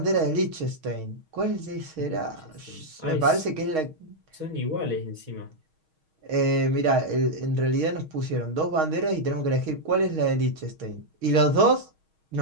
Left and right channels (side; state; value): left; late; 6.4 ms